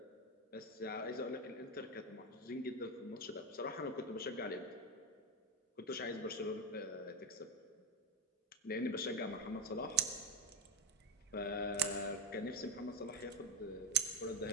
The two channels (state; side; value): normal; both; correlation 0.12